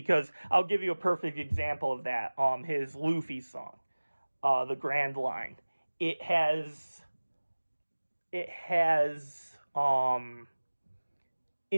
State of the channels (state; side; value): inverted; both; correlation -1.00